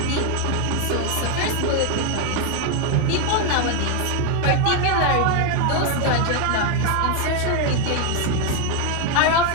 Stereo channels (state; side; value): different; both; correlation 0.01